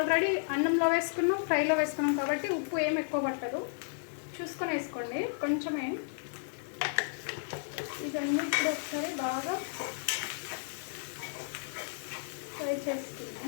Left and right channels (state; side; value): silent; right; digital silence